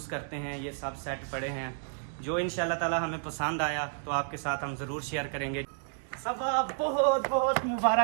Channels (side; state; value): left; silent; digital silence